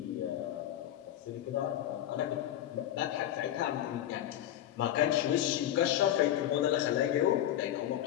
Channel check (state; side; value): quieter; right; 12.1 dB